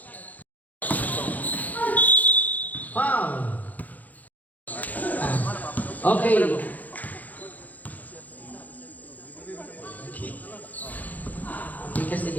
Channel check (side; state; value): right; late; 0.080 ms